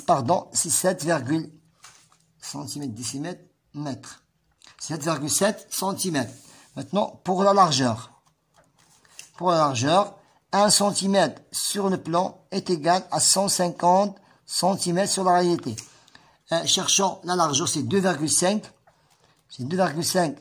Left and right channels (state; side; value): identical; both; correlation 1.00